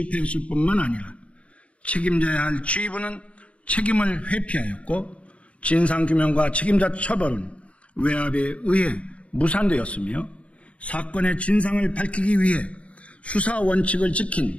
뿐만 아니라 책임져야 할 지휘부는 책임을 회피하였고 진상규명과 책임자 처벌은 외압에 의해 무산되었으며 사건의 진상을 밝히기 위해 수사 원칙을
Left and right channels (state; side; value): late; right; 0.063 ms